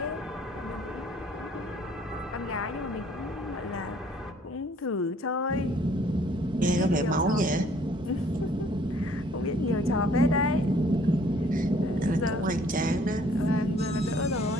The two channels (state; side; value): normal; both; correlation 0.59